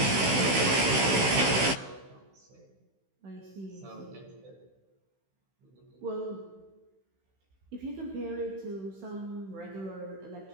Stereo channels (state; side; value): late; left; 16 ms